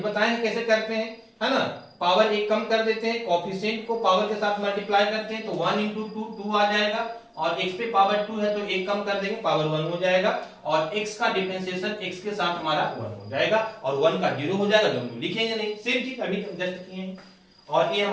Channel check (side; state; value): both; identical; correlation 1.00